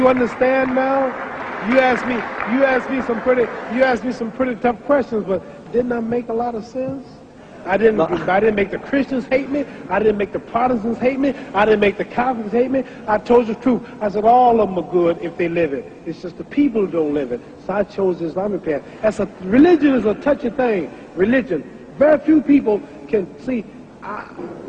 understand now? You asked me some pretty tough questions, but didn't I make a lot of sense? I didn't make the Christians hate me. I didn't make the Protestants hate me. I didn't make the Catholics hate me. I told you the truth. I said all of them are good if they live it. It's just the people who don't live it. So I chose the Islamic path. Religion is a touchy thing. Religion. Very few people can see.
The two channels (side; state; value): both; identical; correlation 1.00